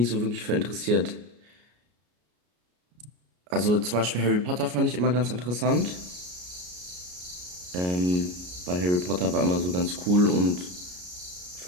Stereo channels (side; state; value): left; late; 33 ms